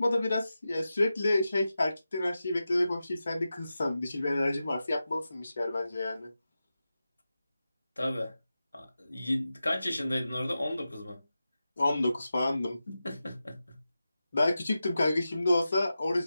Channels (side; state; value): both; inverted; correlation -0.92